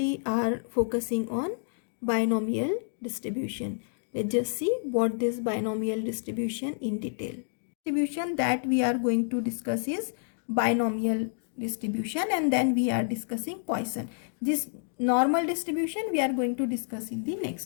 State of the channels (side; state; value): right; silent; digital silence